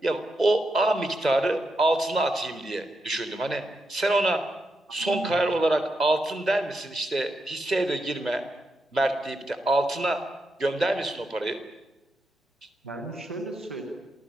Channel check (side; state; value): both; normal; correlation 0.84